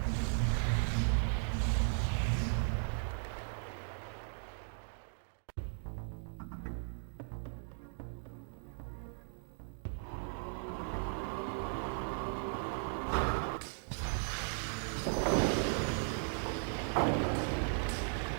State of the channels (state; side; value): silent; left; 53 dB below the other